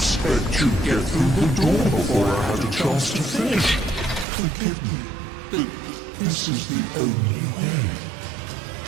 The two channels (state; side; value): drops out; left; at 4.2 s